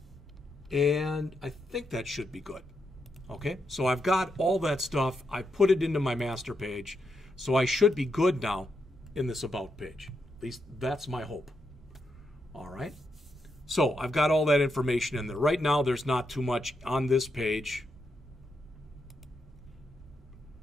And I think that should be good. Okay, so I've got all that stuff. I put it into my master page. So I should be good now in this About page. At least that's my hope. All right. So I've got all that information in there. Right now there's not too much on this page.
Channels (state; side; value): normal; both; correlation 0.83